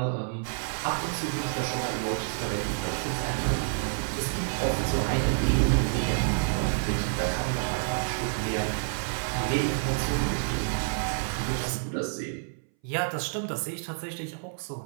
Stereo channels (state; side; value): silent; left; 59 dB below the other